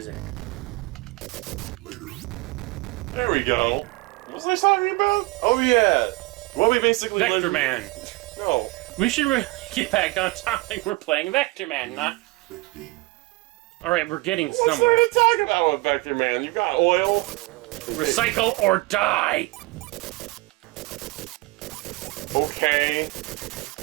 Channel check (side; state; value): left; quieter; 22.6 dB